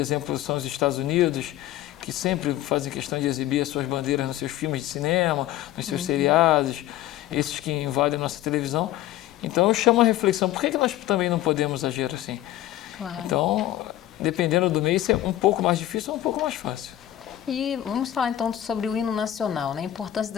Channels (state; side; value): quieter; right; 13.7 dB